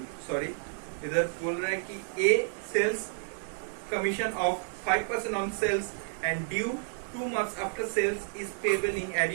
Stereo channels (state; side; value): silent; left; 57 dB below the other